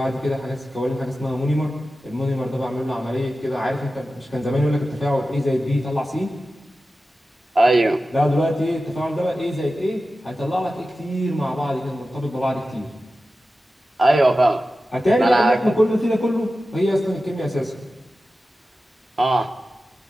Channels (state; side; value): normal; both; correlation 0.94